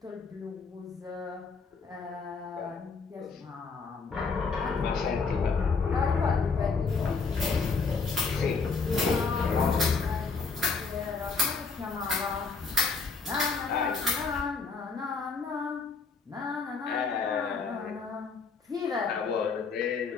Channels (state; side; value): quieter; right; 4.8 dB